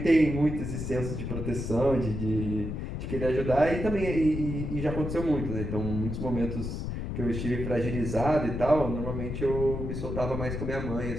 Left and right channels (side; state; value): left; noise; rumble, 4 dB below the sound